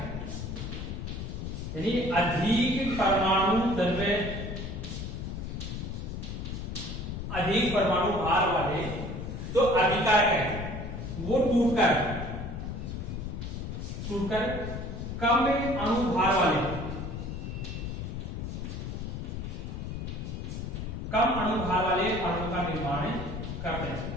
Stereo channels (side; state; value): left; noise; rumble, 6 dB below the sound